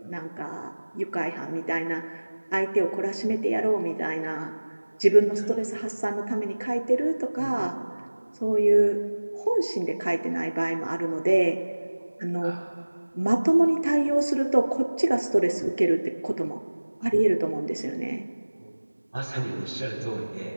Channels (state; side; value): inverted; both; correlation -1.00